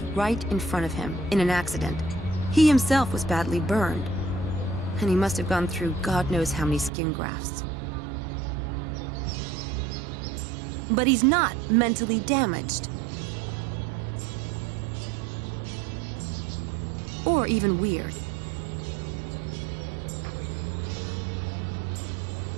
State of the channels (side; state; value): left; drops out; at 6.9 s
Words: right in front of him in an accident. He himself was badly burned. And he must have gone through God knows how many skin grafts. But he's not mentally damaged. Or even weird.